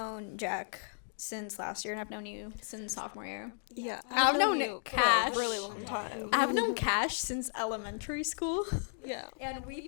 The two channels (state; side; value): silent; right; digital silence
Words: Jack since last year, and I've known you since sophomore year. Yeah, I've known you Cash. for a really long time. I've known Cash since elementary school, Yeah. and